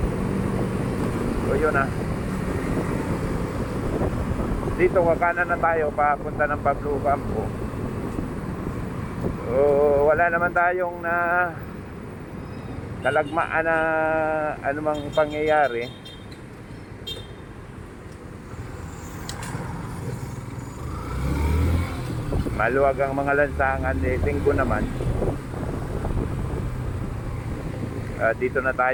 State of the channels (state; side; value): identical; both; correlation 1.00